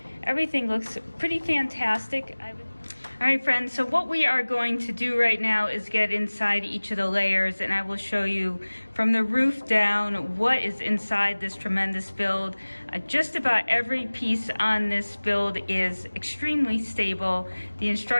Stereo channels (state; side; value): inverted; both; correlation -1.00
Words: Everything looks pretty fantastic. All right, friends, so what we are going to do right now is get inside each of the layers, and I will show you from the roof down what is inside this tremendous build. Just about every piece on this build is extremely stable. The